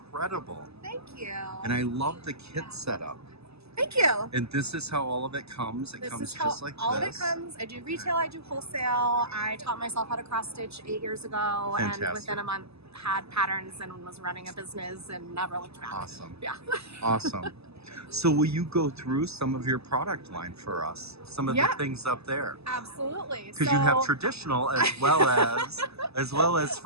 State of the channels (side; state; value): left; late; 0.79 ms